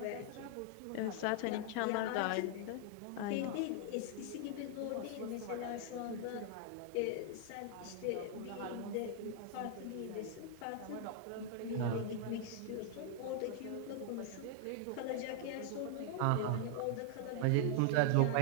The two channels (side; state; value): both; different; correlation 0.00